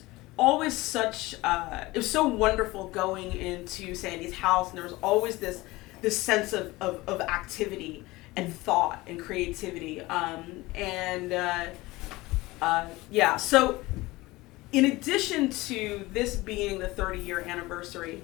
always such, it was so wonderful going into Sandy's house, and there was always this sense of activity and thought and creativity. So in addition to this being the 30-year anniversary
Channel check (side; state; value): right; quieter; 20.4 dB